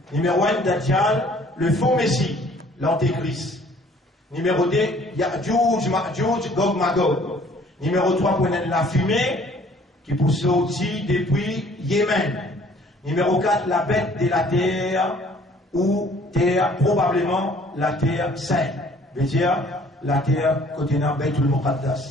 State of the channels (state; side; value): normal; both; correlation 0.56